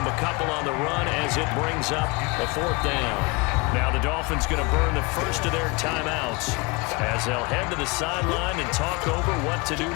a couple on the run as it brings up a 4th down. Now the Dolphins going to burn the first of their timeouts as they'll head to the sideline and talk over what to do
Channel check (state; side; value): quieter; right; 26.4 dB